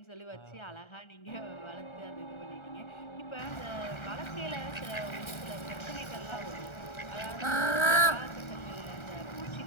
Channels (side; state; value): right; late; 1.3 ms